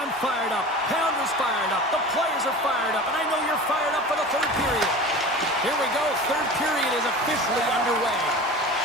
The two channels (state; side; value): normal; both; correlation 0.35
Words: fired up. Pounder's fired up. The players are fired up. And I know you're fired up for the third period. Here we go. Third period is officially underway.